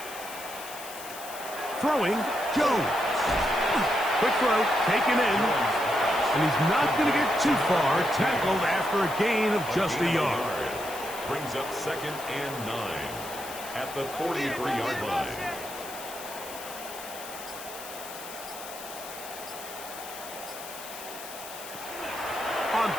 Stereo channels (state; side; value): noise; left; hiss, 13 dB below the sound